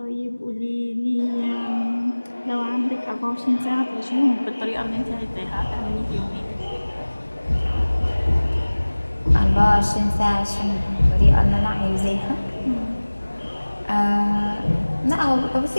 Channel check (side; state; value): both; inverted; correlation -1.00